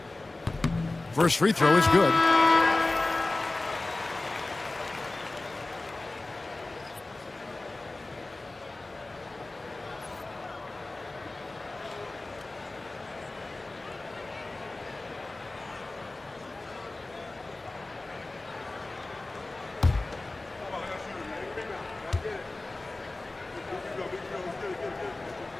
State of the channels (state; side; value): quieter; right; 3.0 dB